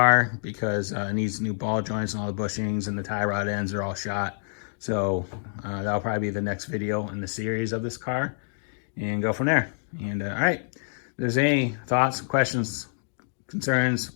because it needs new ball joints and all the bushings, and the tie rod ends are all shot. So that'll probably be the next video in the series of this car, and go from there. And all right, if there's any thoughts, questions, concerns,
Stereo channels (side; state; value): right; silent; 60 dB below the other